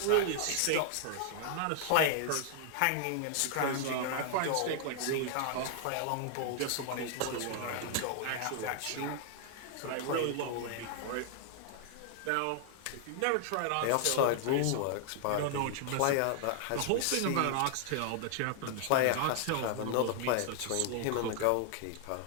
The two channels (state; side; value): different; both; correlation 0.00